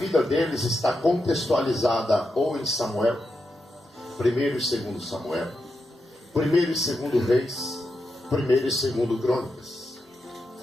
deles está contextualizada ou em Samuel, 1º e 2º Samuel, 1º e 2º Reis, 1º e 2º Crônicas.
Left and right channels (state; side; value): normal; both; correlation 0.86